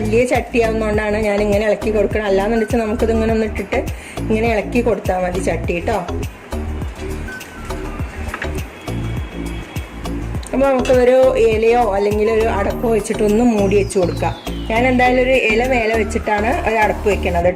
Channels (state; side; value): identical; both; correlation 1.00